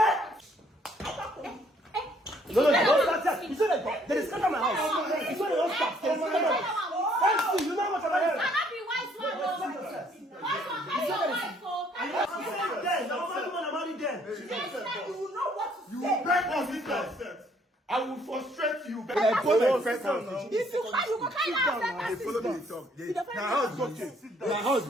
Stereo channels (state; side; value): normal; both; correlation 0.64